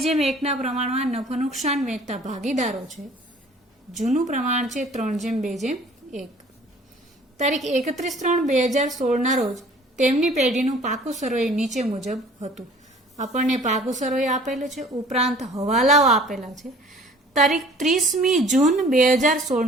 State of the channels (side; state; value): both; normal; correlation 0.51